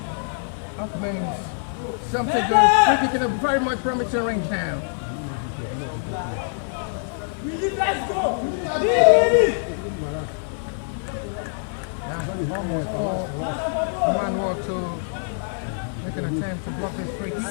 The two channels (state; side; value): silent; right; digital silence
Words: Upman's something good. Free kick in a very much promising range now. Let's go! Almost all man work to make an attempt to block this free kick.